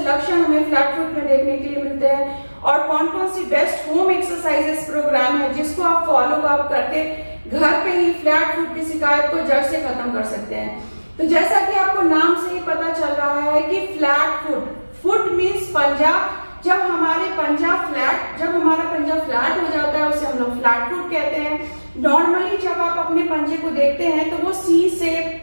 हमें फ्लैट फुट में देखने के लिए मिलते हैं और कौन कौन सी बेस्ट होम एक्सरसाइजेस प्रोग्राम है जिसको आप फॉलो अप करके घर पे ही फ्लैट फुट की शिकायत को जड़ से खत्म कर सकते हैं। तो जैसा कि आपको नाम से ही पता चल रहा है कि फ्लैट फुट मीन्स पंजा। जब हमारा पंजा फ्लैट हो जाता है उसे हम लोग फ्लैट फुट कहते हैं। नॉर्मली जब आप अपने पंजे को देखते हैं तो वो सी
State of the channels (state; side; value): inverted; both; correlation -1.00